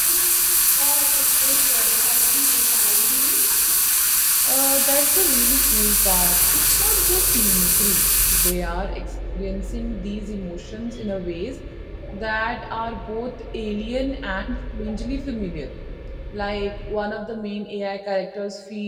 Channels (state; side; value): identical; both; correlation 1.00